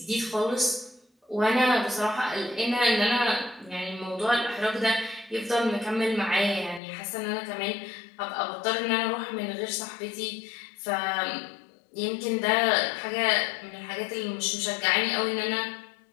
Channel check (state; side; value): drops out; right; at 6.8 s